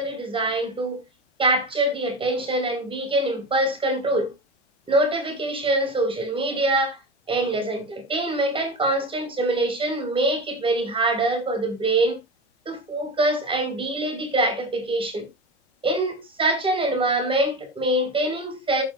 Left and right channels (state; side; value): normal; both; correlation 0.24